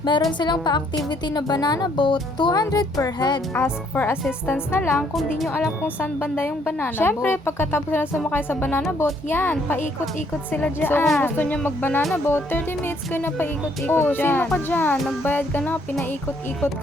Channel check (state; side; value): normal; both; correlation 0.67